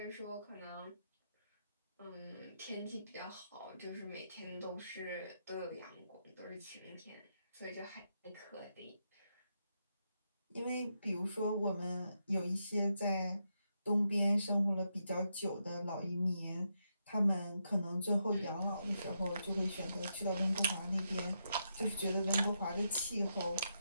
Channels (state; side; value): inverted; both; correlation -0.82